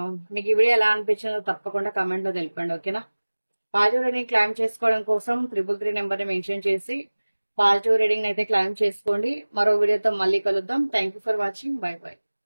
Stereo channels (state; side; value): inverted; both; correlation -1.00